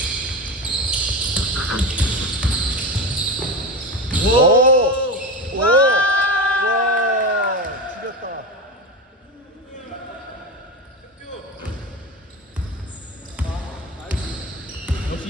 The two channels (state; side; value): normal; both; correlation 0.22